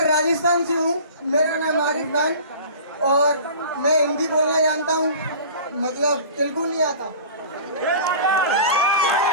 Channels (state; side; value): inverted; both; correlation -0.40